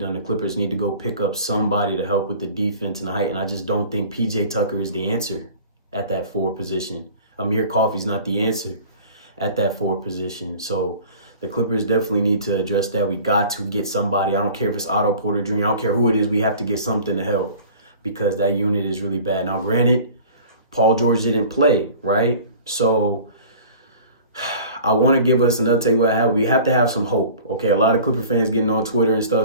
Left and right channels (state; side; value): inverted; both; correlation -0.44